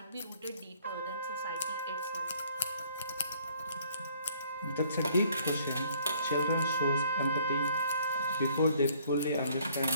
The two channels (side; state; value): both; inverted; correlation -0.60